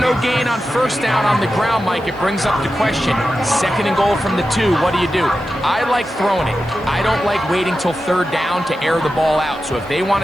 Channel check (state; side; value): noise; right; hiss, 30 dB below the sound